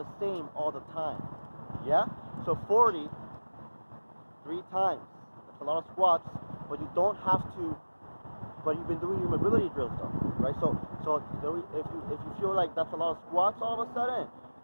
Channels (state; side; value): inverted; both; correlation -1.00